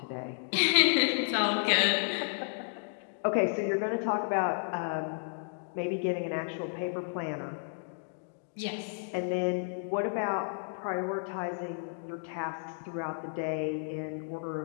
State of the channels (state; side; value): silent; right; digital silence